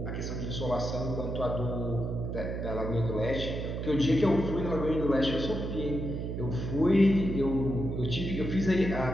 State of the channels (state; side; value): noise; right; hum, 4 dB below the sound